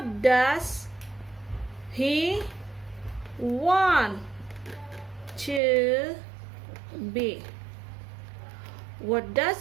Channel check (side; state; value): left; drops out; at 5.6 s